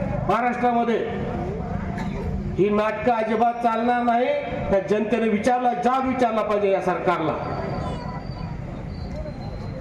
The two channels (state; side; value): identical; both; correlation 1.00